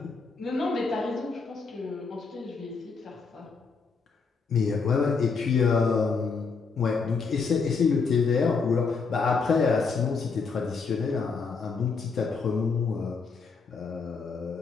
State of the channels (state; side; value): quieter; right; 4.9 dB